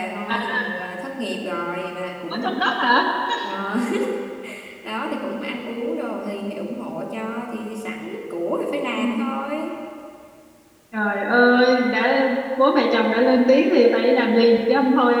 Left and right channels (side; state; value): both; identical; correlation 1.00